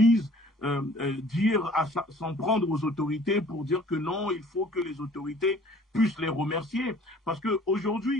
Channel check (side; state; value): both; normal; correlation 0.53